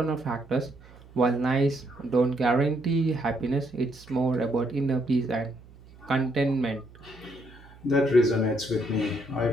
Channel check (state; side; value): noise; right; hum, 23 dB below the sound